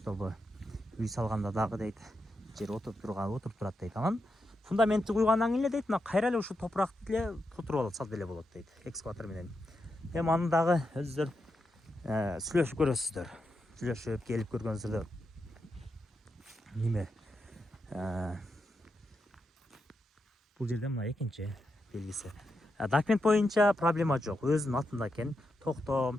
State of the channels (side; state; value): both; normal; correlation 0.86